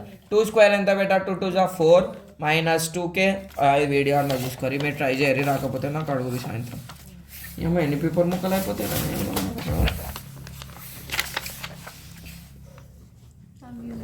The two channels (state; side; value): identical; both; correlation 1.00